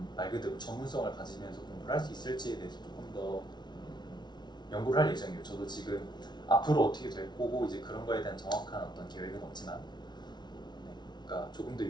말 그대로 전문성을 가지면서 공부를 할 수 있을지에 대해서 조금 더 연구를 할 예정이에요. 저도 지금 앞으로 어떻게 될 거고 이제 그런 거에 대한 정확한 어떤 계획은 없지만 네, 그러니까 조금 더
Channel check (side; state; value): right; late; 0.20 ms